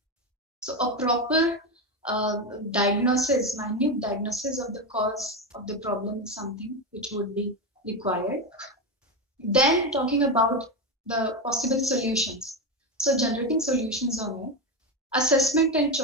So a proper diagnosis, minute diagnosis of the cause of the problem is something which would be required. Then talking about the possible solutions. So generating solutions on it, assessment and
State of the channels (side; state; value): both; normal; correlation 0.14